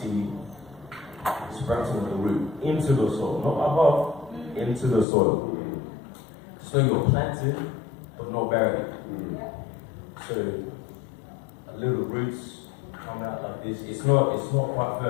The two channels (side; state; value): right; drops out; at 5.1 s